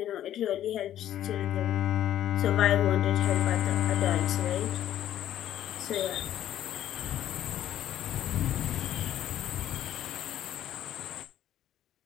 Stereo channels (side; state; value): right; quieter; 11.8 dB